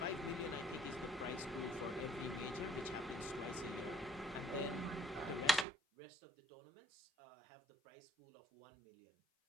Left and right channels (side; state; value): left; drops out; at 5.7 s